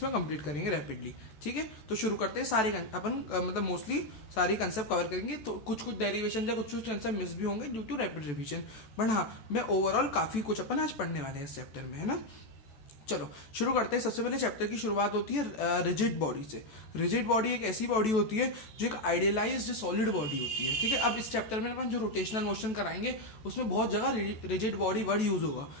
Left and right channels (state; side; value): late; right; 14 ms